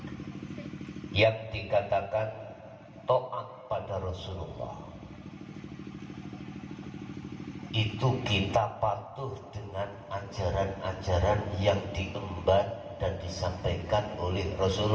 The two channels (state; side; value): identical; both; correlation 1.00